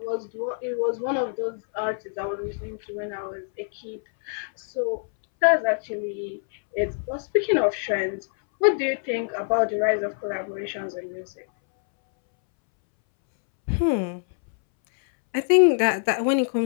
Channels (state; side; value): silent; right; 62 dB below the other